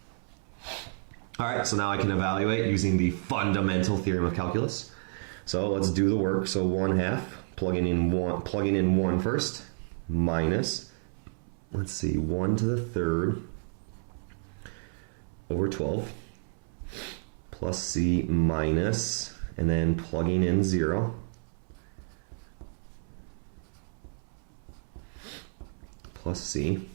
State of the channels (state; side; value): silent; left; 58 dB below the other